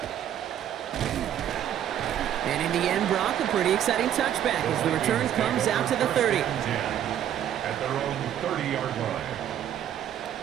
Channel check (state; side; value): quieter; left; 10.5 dB